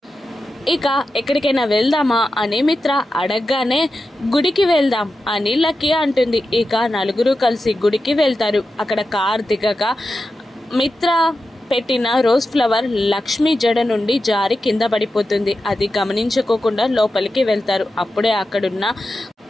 ఇక ఎక్కడికైనా వెళ్దామా అని మిత్ర అడగగానే గుడికి వెళ్దాం అని లక్కీ అంటుంది. ఇక నలుగురు కలిసి గుడికి వెళ్తారు. అక్కడ కార్ దిగగా మిత్ర పెట్టిన రోజ్ ఫ్లవర్ లక్ష్మి జడ నుండి జారి కింద పడిపోతుంది. అది గమనించుకోకుండా లోపలికి వెళ్తారు. అప్పుడే అక్కడున్న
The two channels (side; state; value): both; normal; correlation 0.91